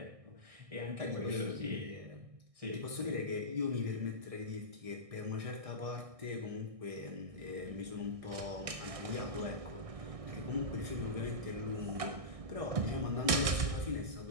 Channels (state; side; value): late; left; 1.6 ms